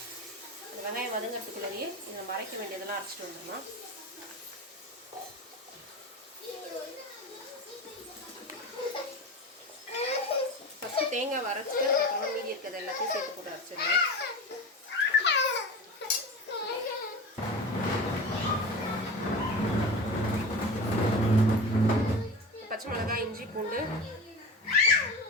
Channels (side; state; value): both; normal; correlation 0.29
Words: அந்த வெங்காயம் வதங்கிறதுக்குள்ளேயே இதை நம்ம அரைக்க வேண்டியதெல்லாம் அரைச்சிட்டு வந்துடலாம். ஃபஸ்ட்டு தேங்காய் வரைச்சிட்டு அதுக்கப்புறம் மீதி இருக்கிறது எல்லாத்தையும் சேர்த்து போட்டு அரைச்சிடலாம். பச்சை மிளகாய், இஞ்சி, பூண்டு,